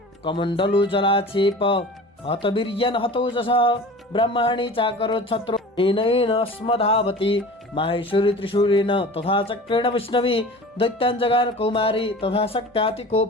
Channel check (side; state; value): both; normal; correlation 0.39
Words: कमण्डलु जलाक्षेप हतवीर्यन् हतोजसः ब्रह्माणि चाकरो छत्रो येन स्मधावति। माहेश्वरी त्रिशूलेन तथा चक्रेण वैष्णवी दैत्यान् जगार कौमारी तथा